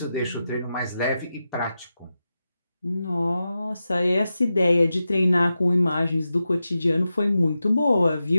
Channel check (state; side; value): inverted; both; correlation -0.91